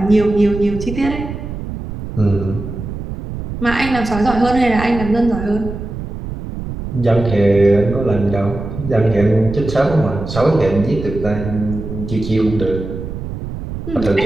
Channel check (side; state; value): right; noise; rumble, 8 dB below the sound